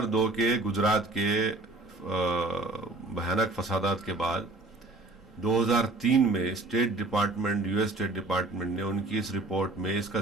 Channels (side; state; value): left; quieter; 3.1 dB